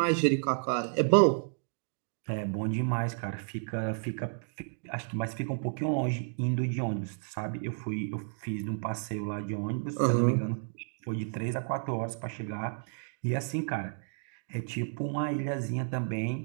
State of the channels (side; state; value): left; silent; digital silence